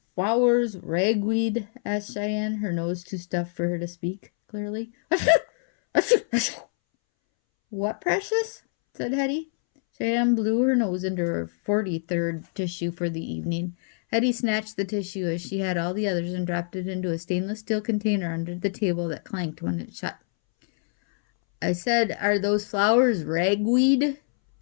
flowers ragweed? Asked Cheyenne, her nose too stuffed for her to speak clearly. What, precious? Said Hetty. Cheyenne blew her nose into her 43rd tissue for the evening. Hetty snatched the tissue as she had all the others and dropped it into a stainless steel container under the table that clanked when it shut. I said, are those flowers ragweed?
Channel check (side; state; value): right; silent; 61 dB below the other